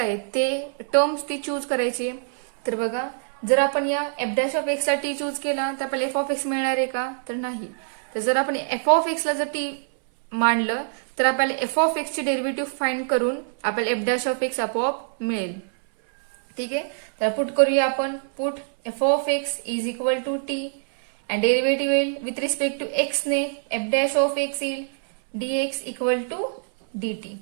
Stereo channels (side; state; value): left; silent; 61 dB below the other